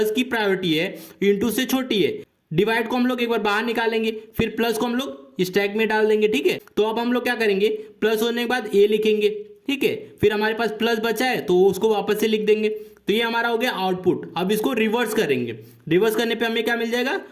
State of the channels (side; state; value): both; identical; correlation 1.00